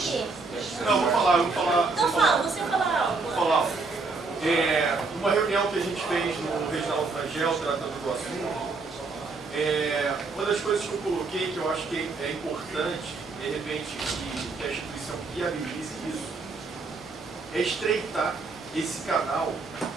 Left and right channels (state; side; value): quieter; left; 4.0 dB